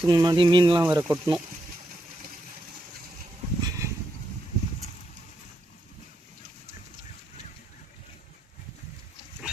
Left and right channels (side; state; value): both; normal; correlation 0.82